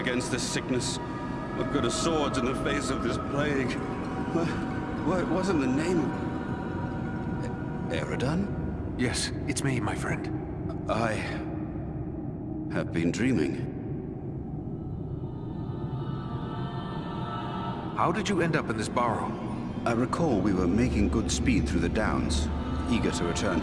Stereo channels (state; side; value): identical; both; correlation 1.00